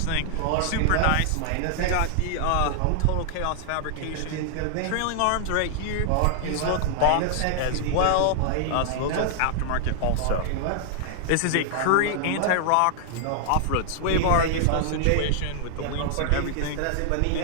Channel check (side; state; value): both; different; correlation -0.01